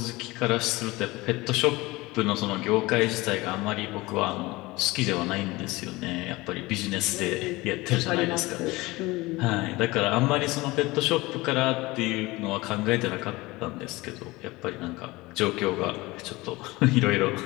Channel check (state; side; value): quieter; right; 21.3 dB